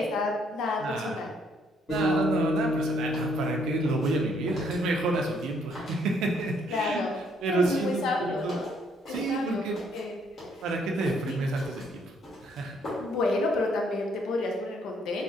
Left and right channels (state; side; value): normal; both; correlation 0.68